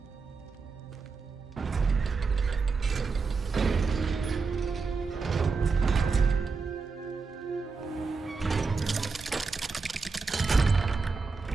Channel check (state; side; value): quieter; left; 4.6 dB